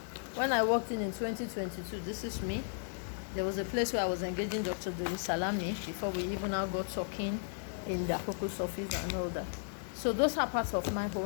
When I walked in 2022, this is me. There was a place where I was engaging Dr. Dori Salami before we even now got talking in the Akoko's office and all that. So those are parts of my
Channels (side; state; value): right; silent; digital silence